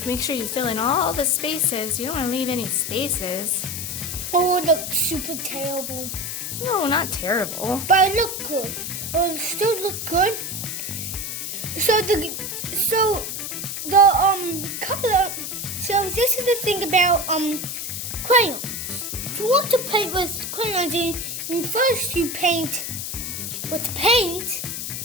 make sure you fill in all the spaces. You don't want to leave any spaces. Oh, it looks super terrible. No, not terrible. But it looked good. It still looked good. So the color. So this is the thing about crayons. If you want to paint with crayons, and first you paint with paint,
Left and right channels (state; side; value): noise; left; hiss, 5 dB below the sound